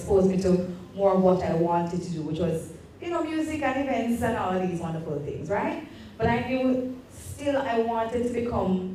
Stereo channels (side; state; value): both; identical; correlation 1.00